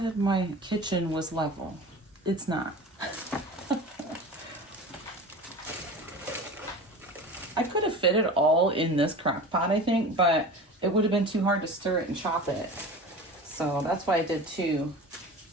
my kitchen was level. It's not. I could have fit it all in this crock pot, I think, but it would have been too hard to stir it and chop it. So that's why I did two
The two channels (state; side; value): normal; both; correlation 0.34